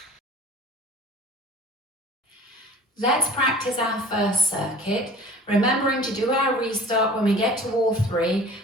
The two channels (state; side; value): normal; both; correlation 0.45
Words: Let's practice our first circuit, remembering to do our restart when we get to wall 3